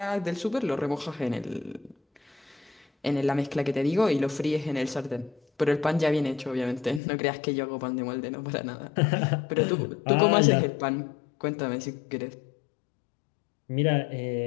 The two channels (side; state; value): right; drops out; at 7.0 s